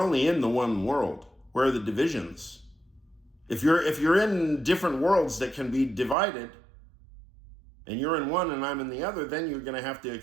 only in the one world. Where are the divisions? If you're in different worlds that can be divided, and you're in one and I'm in the other, then you're going to have to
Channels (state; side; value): drops out; left; at 6.2 s